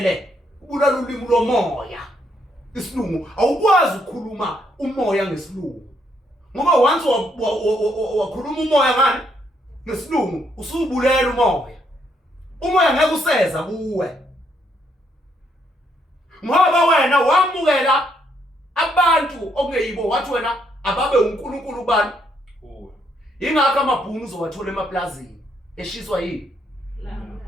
ubulala ulimi lomoya. Isilungu awukwazi ukukhuluma umoya ngesilungu. Ngoba once wakhuluma umoya ngani? Ngesilungu usubulela umoya. Umoya ngeke useza kuwe. Ngoba wena wamukela abantu okungeyibo wathi wena ababe uNkulunkulu bani? Ingakho amabhunu uzowathola emaplazini eshiswa yini?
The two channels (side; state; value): both; normal; correlation 0.73